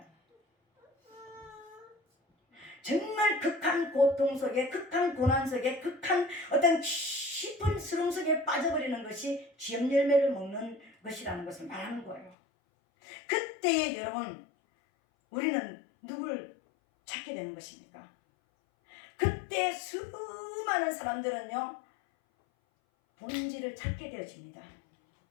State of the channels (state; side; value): drops out; right; at 12.4 s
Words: 정말 극한 고통 속에, 극한 고난 속에, 극한 어떤 깊은 수렁 속에 빠져버리는 것이 지업 열매를 먹는 것이라는 것을 말하는 거예요. 그때에 여러분 우리는 누굴 찾게 되는 것입니까? 그때 수많은 사람들은요 본질을 찾게 되어집니다.